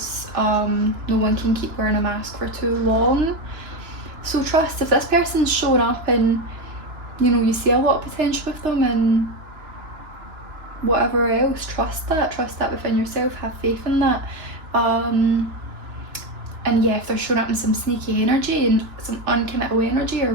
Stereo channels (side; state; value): left; late; 2.9 ms